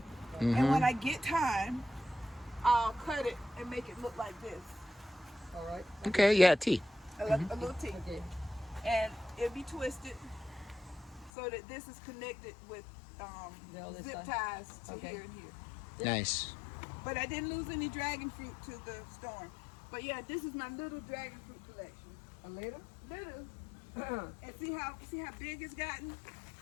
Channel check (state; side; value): drops out; right; at 11.3 s